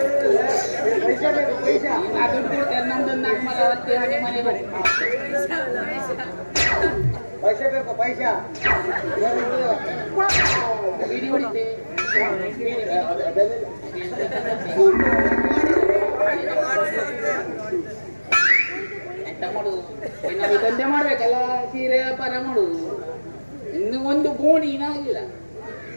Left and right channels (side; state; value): both; inverted; correlation -1.00